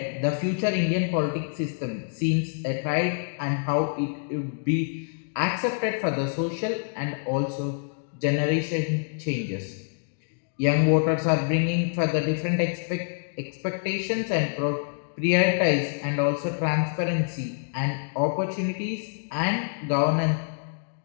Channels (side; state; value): right; silent; digital silence